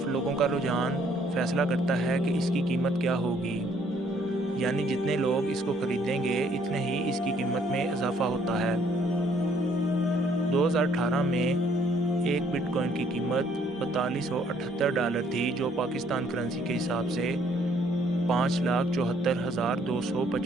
لوگوں کا رجحان فیصلہ کرتا ہے کہ اس کی قیمت کیا ہوگی، یعنی جتنے لوگ اس کو خریدیں گے اتنے ہی اس کی قیمت میں اضافہ ہوتا ہے۔ 2018 میں ایک بٹ کوائن کی قیمت $4278 تھی جو پاکستان کرنسی کے حساب سے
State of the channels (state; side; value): normal; both; correlation 0.65